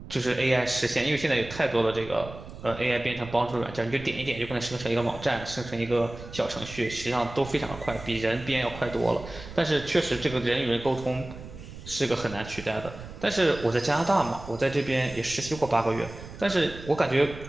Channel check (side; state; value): right; noise; rumble, 14 dB below the sound